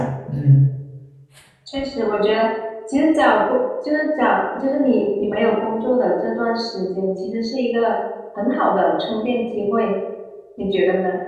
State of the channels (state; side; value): identical; both; correlation 1.00